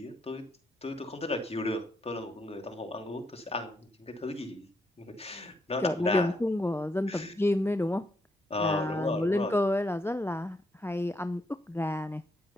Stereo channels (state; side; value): normal; both; correlation 0.76